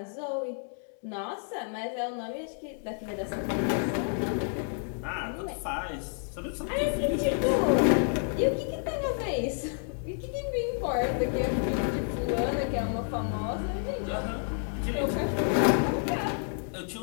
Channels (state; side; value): silent; right; 58 dB below the other